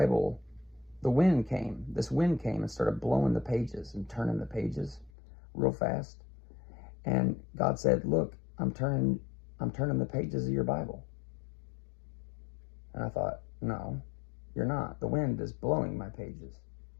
this wind came and started blowing the pages and turning the pages real fast. And God said, look, I'm turning the pages of your Bible. And I thought, no, you're not. The wind is blowing my pages.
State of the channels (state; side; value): drops out; right; at 5.1 s